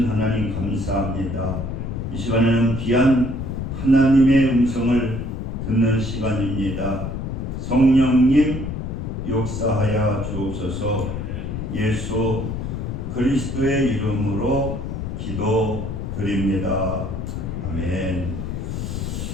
하나님 감사합니다. 이 시간에는 귀한 하나님의 음성을 듣는 시간입니다. 성령님 역사하여 주옵소서. 예수 그리스도의 이름으로 기도드립니다. 아멘.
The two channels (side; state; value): left; noise; rumble, 4 dB below the sound